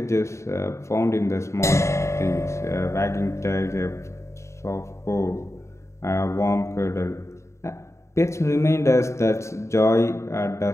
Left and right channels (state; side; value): late; right; 0.14 ms